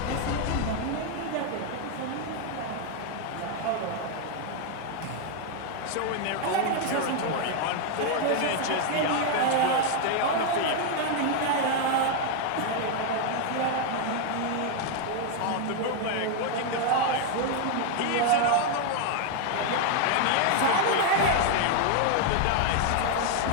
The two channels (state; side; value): different; both; correlation 0.00